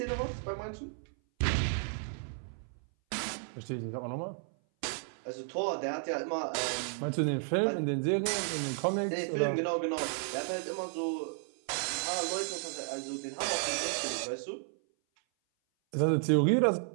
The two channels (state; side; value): silent; left; 56 dB below the other